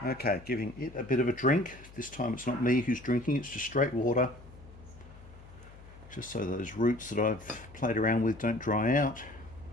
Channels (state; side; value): noise; left; hum, 19 dB below the sound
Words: Okay, giving it a bit of a drink. This time it's not me who's drinking, it's just straight water. Just so those roots that I've played around with don't dry out.